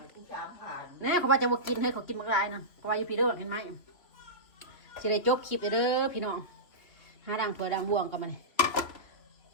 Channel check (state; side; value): late; right; 2.7 ms